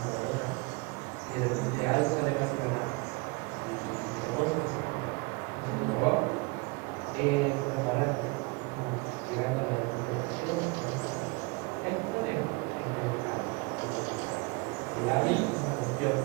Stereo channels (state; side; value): quieter; left; 27.4 dB